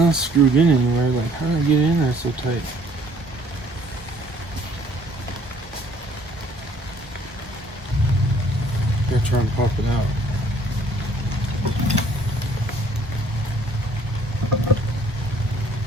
screwed in anywhere. Like, how did I get it in there so tight? Gotta try and pop it out.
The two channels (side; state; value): both; normal; correlation 0.59